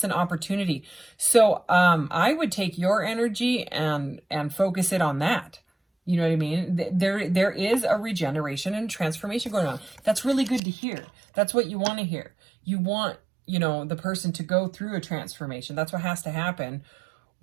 and opportunity. So I would take your energy and focus it on that. You know what I mean? There is a regeneration and transformation going on. That's really good to hear. That's what you want to hear. You want you know, the person to go through a transformation. That's what has to happen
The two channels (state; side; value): drops out; left; at 10.6 s